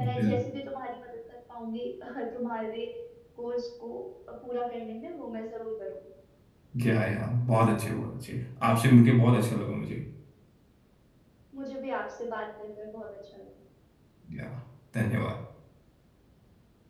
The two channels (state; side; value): identical; both; correlation 1.00